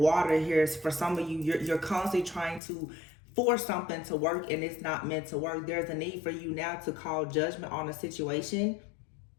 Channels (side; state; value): right; drops out; at 2.6 s